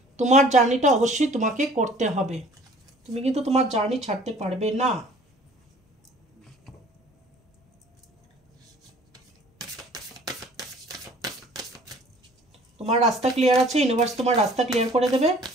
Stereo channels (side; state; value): both; normal; correlation 0.52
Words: তোমার জার্নিটা অবশ্যই তোমাকে করতে হবে, তুমি কিন্তু তোমার জার্নি ছাড়তে পারবে না। তোমার রাস্তা ক্লিয়ার আছে, ইউনিভার্স তোমার রাস্তা ক্লিয়ার করে দেবে,